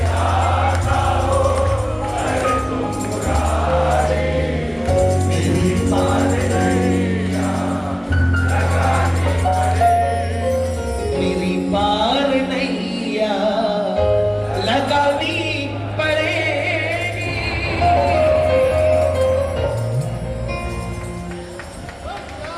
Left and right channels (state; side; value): identical; both; correlation 1.00